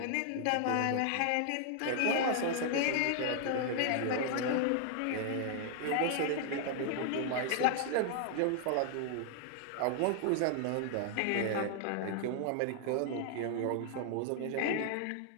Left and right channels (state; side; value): different; both; correlation 0.00